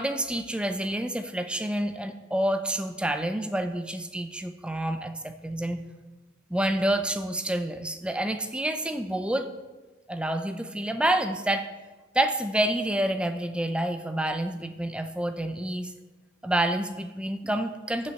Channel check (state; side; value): normal; both; correlation 0.74